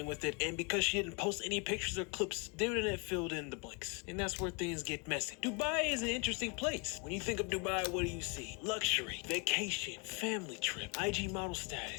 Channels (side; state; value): right; quieter; 31.1 dB